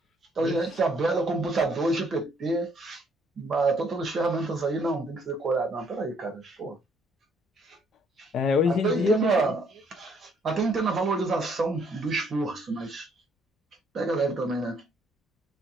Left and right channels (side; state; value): both; normal; correlation 0.66